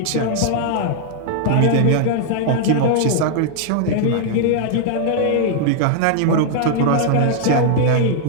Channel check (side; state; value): both; different; correlation -0.01